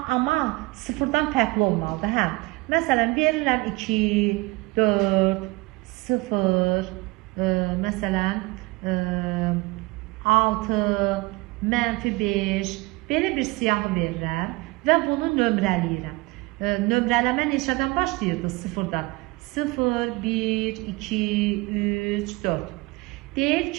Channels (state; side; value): quieter; left; 22.9 dB